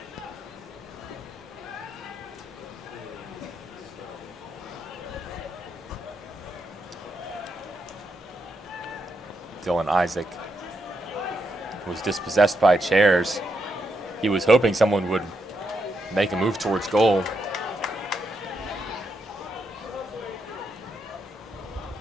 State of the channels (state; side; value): normal; both; correlation 0.81